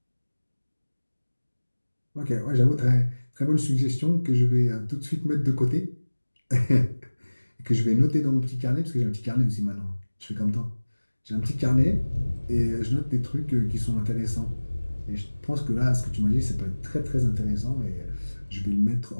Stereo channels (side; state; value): both; inverted; correlation -1.00